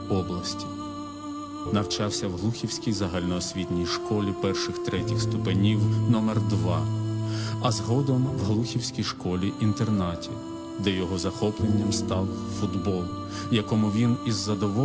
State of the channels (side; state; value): both; identical; correlation 1.00